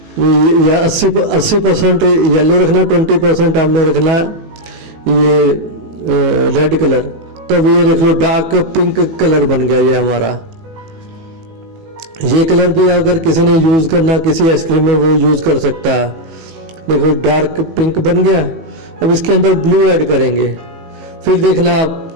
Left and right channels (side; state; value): left; late; 18 ms